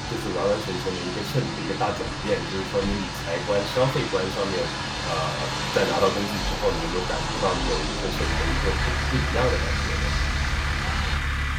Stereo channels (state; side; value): identical; both; correlation 1.00